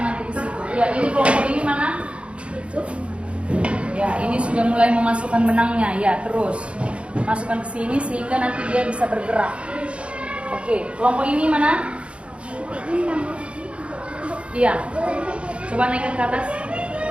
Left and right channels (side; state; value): left; late; 0.059 ms